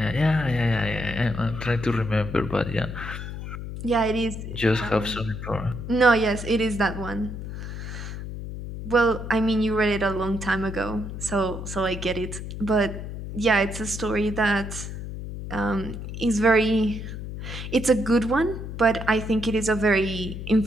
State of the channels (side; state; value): left; noise; hum, 8 dB below the sound